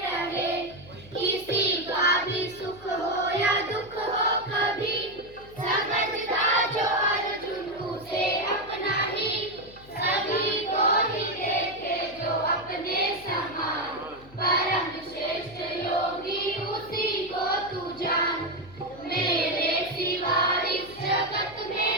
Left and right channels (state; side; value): noise; left; hum, 21 dB below the sound